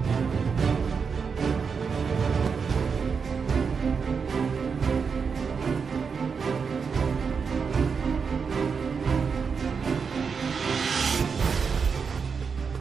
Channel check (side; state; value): left; quieter; 5.8 dB